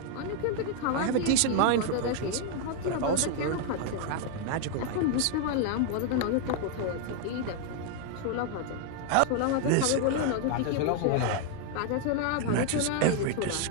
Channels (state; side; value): different; both; correlation 0.00